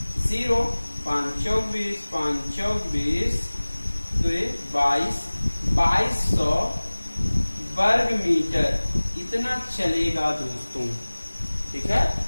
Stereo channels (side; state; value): both; inverted; correlation -1.00